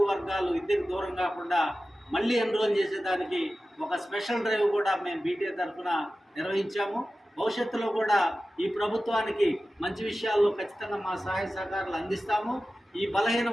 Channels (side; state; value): both; normal; correlation 0.95